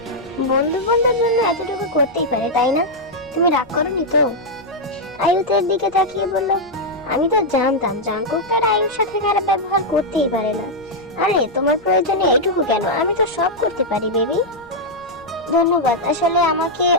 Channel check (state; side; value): noise; left; rumble, 27 dB below the sound